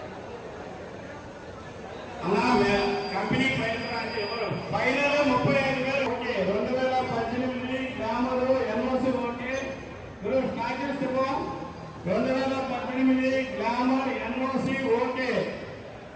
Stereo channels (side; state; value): both; identical; correlation 1.00